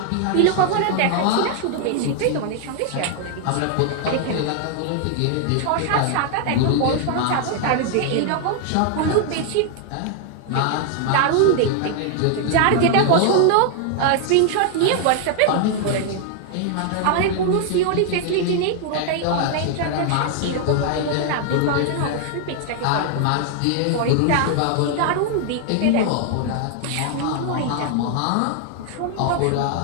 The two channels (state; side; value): different; both; correlation 0.00